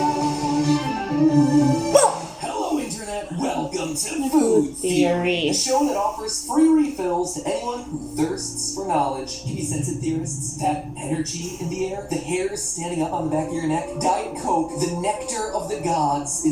Hello, Internet. Welcome to Food Theory, a show that offers free refills to anyone who thirsts for knowledge. Give me sense of theorists. That energy in the air, the hairs standing up on the back of your neck. Diet Coke, the nectar of the gods,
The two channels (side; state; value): both; identical; correlation 1.00